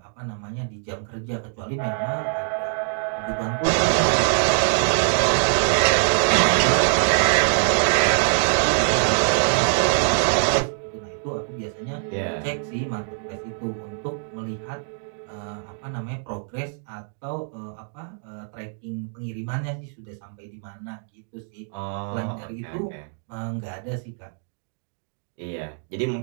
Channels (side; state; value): left; silent; digital silence